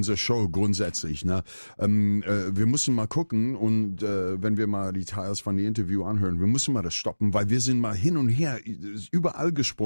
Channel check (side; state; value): both; inverted; correlation -1.00